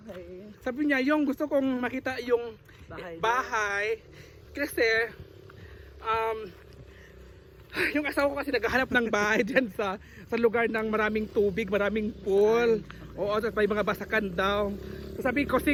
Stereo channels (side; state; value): both; identical; correlation 1.00